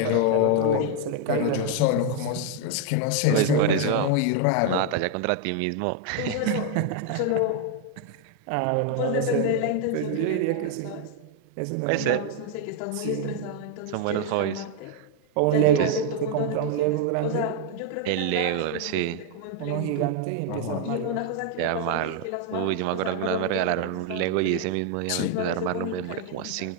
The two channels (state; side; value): different; both; correlation 0.00